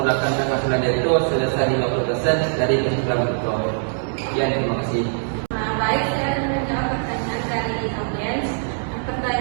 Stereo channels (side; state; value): left; silent; digital silence